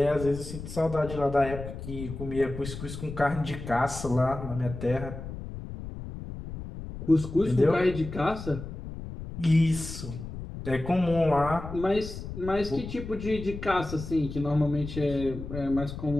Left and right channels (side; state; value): left; noise; rumble, 9 dB below the sound